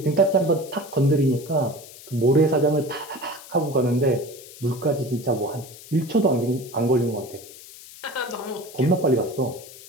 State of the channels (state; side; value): noise; left; hiss, 18 dB below the sound